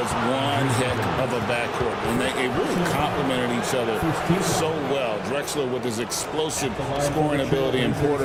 one heck of a backcourt. And they really complemented each other so well. Drexler with his explosive scoring ability and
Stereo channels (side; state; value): both; identical; correlation 1.00